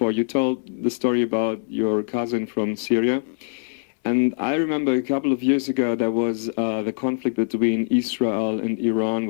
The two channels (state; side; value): silent; right; 63 dB below the other